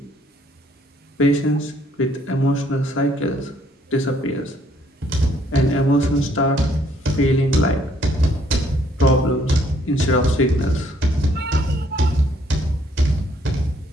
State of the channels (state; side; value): normal; both; correlation 0.66